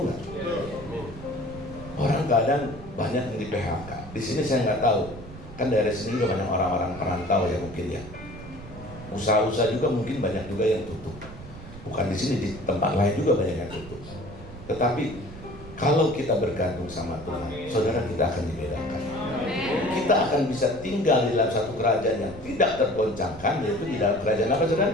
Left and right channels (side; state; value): right; noise; rumble, 15 dB below the sound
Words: nggak? Orang keadaan banyak yang di PHK. Di sini saya nggak tahu. Kan daerah sini juga banyak orang-orang perantau ya mungkin ya. Usaha-usaha juga mungkin banyak juga yang tutup. Bukan di sini, di tempat lain juga banyak yang tutup. Tetapi kalau kita bergantung sama Tuhan, saudara, kita akan dibedakan. Kita akan bisa tinggal di dalam satu kerajaan yang tidak tergoncangkan, yaitu di dalam kerajaan apa, saudara?